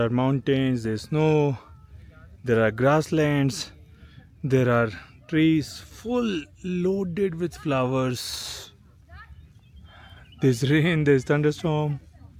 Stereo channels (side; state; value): both; identical; correlation 1.00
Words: are mountains, there's snow, there are grasslands, there are trees full loaded with flowers. There's rain, there's thunderstorm.